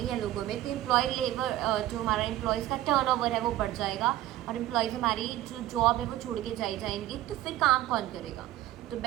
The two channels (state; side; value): quieter; left; 14.5 dB